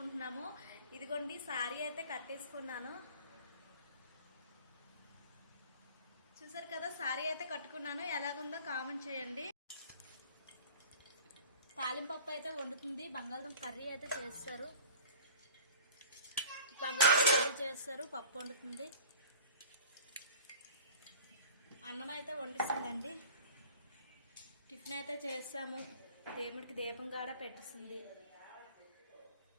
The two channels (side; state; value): both; inverted; correlation -0.44